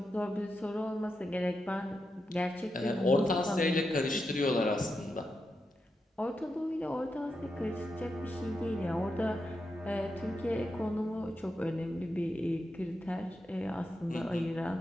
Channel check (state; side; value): normal; both; correlation 0.87